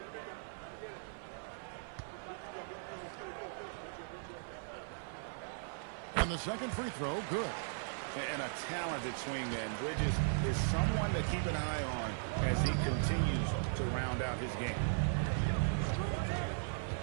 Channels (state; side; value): silent; left; 52 dB below the other